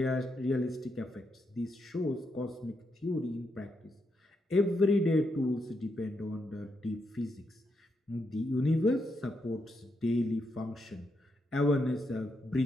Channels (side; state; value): both; normal; correlation 0.81